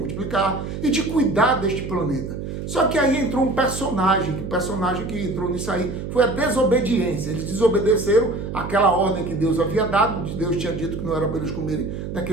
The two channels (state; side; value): noise; right; hum, 6 dB below the sound